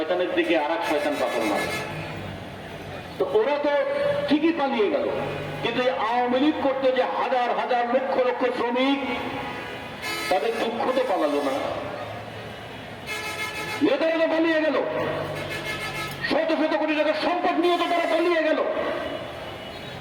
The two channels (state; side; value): identical; both; correlation 1.00